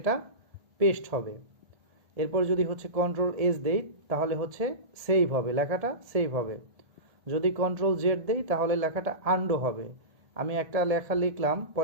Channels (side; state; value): left; late; 1.7 ms